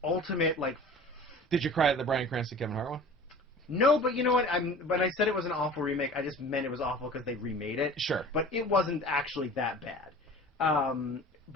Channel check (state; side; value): normal; both; correlation 0.41